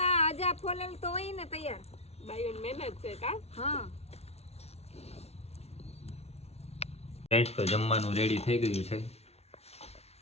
આ 1000 ફોલેલું તો હોય ને તૈયાર. બાયુન મહેનત છે કા. હા ફ્રેન્ડ્સ તો જમવાનું રેડી થઈ ગયું છે.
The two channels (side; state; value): right; late; 0.31 ms